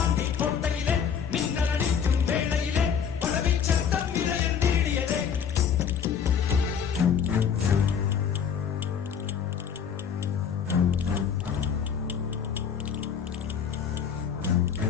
கோட்டையிலே மின்னல் அடிக்கும் வேளையிலே பழவி சத்தம் இதயம் தீடியதே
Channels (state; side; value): quieter; right; 7.4 dB